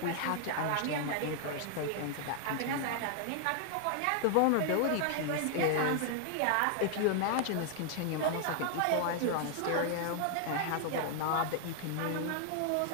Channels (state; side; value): different; both; correlation 0.00